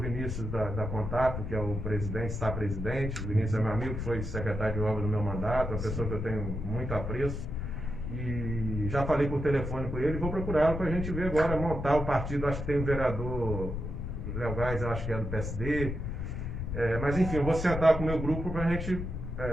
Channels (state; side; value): noise; left; rumble, 4 dB below the sound